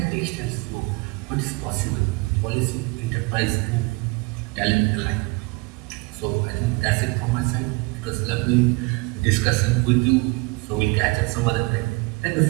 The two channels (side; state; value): left; quieter; 25.9 dB